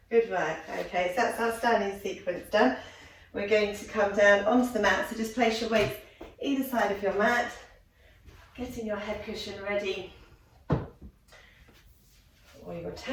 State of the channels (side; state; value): both; identical; correlation 1.00